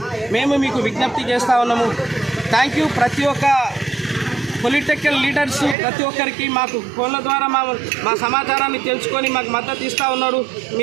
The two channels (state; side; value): drops out; left; at 5.8 s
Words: మేము మీకు విజ్ఞప్తి చేస్తూ ఉన్నాము. Thank you. ప్రతి ఒక్క పొలిటికల్ లీడర్స్ ప్రతి ఒక్కరికి మాకు ఫోన్ల ద్వారా మా సమాచారాన్ని తెలుసుకొని మాకు మద్దతు ఇస్తూ ఉన్నారు.